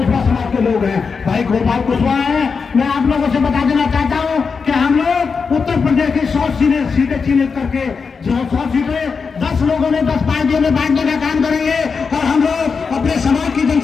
समाज के लोग हैं। भाई गोपाल कुशवाहा हैं। मैं आप लोगों से बता देना चाहता हूँ कि हम लोग उत्तर प्रदेश की 100 सीटें चिन्हित करके, जो 100 सीटें 10 लोगों ने 10 पार्टियों में बांटने का काम करेंगे। और हम लोग अपने समाज की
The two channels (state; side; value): quieter; right; 5.3 dB